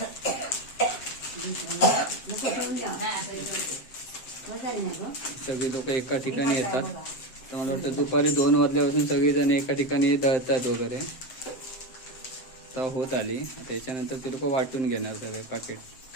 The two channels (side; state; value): right; late; 7.7 ms